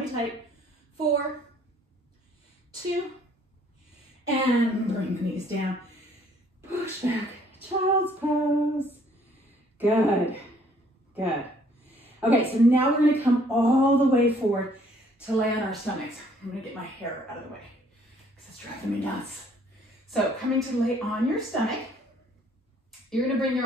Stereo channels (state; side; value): normal; both; correlation 0.62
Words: tight. 4, 2. And bring the knees down. Push back. Child's pose. Good. Good. Okay, so now we're going to come all the way forward to lay on our stomachs. I'm gonna get my hair out of the way because it's driving me nuts. So coming to lay on your stomach, you're gonna bring